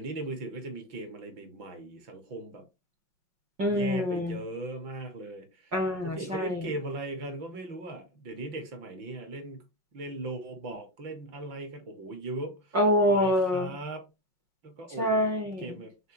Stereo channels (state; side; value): late; left; 5.5 ms